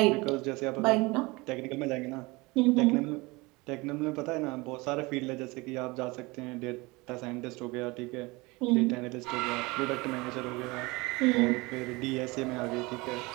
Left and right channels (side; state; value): left; quieter; 23.8 dB